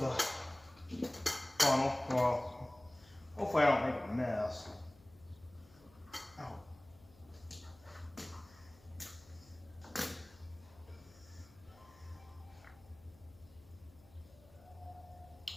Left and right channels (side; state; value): left; noise; hum, 25 dB below the sound